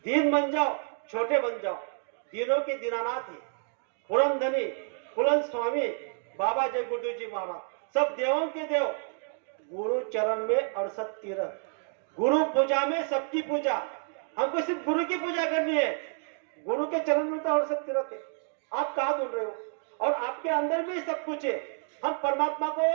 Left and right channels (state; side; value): silent; left; 56 dB below the other